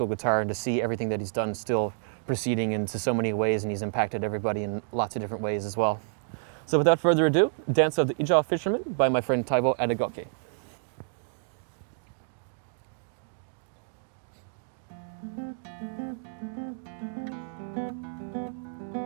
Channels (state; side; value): silent; left; digital silence